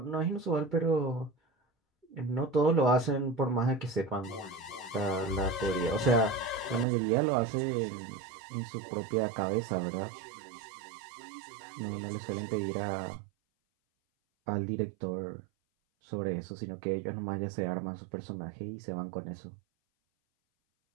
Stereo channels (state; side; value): drops out; left; at 6.9 s